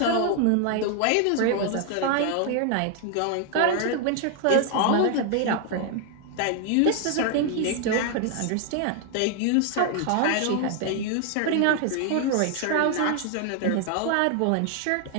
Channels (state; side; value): different; both; correlation 0.00